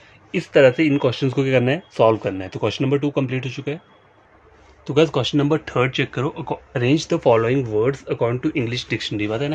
इस तरह से इन क्वेश्चंस को क्या करना है, सॉल्व करना है। तो क्वेश्चन नंबर 2 कंप्लीट हो चुका है। तो गाइस क्वेश्चन नंबर 3 चेक करो, arrange the following words according to English dictionary. पता है ना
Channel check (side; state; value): both; identical; correlation 1.00